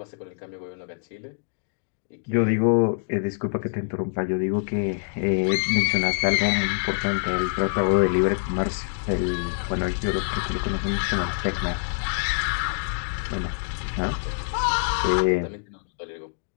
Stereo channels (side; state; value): right; silent; digital silence